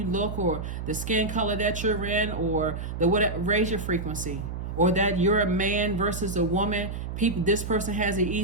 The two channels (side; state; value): right; noise; hum, 6 dB below the sound